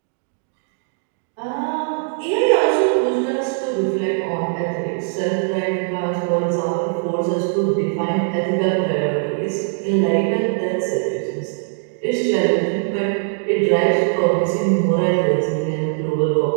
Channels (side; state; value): left; silent; 65 dB below the other